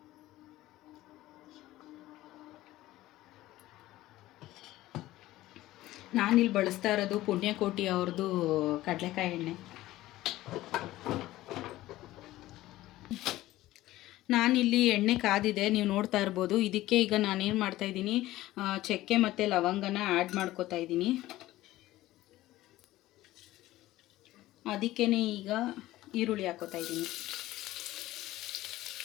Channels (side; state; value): right; quieter; 16.2 dB